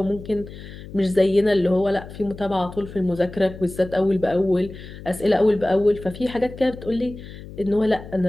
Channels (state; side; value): noise; left; hum, 14 dB below the sound